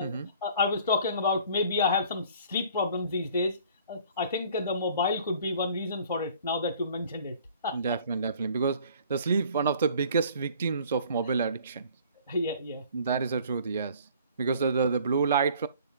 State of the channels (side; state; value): both; inverted; correlation -0.53